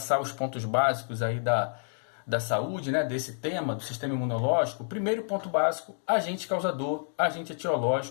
os pontos básicos aí da saúde, né, desse tema, do sistema imunológico, o primeiro ponto básico, agente causador, agente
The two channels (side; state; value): right; silent; digital silence